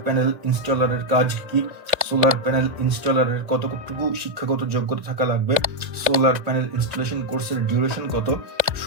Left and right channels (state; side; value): late; left; 2.0 ms